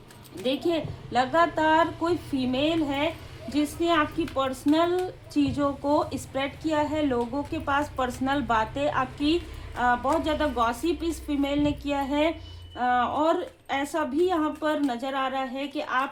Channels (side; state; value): both; identical; correlation 1.00